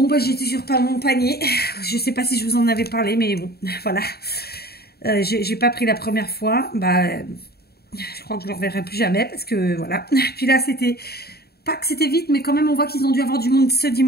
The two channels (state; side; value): late; right; 0.46 ms